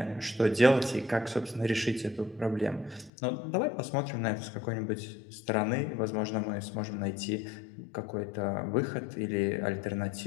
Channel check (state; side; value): drops out; right; at 3.1 s